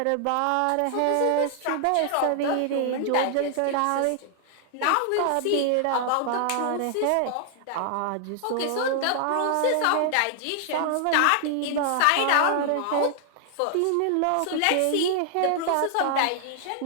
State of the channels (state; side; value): different; both; correlation 0.00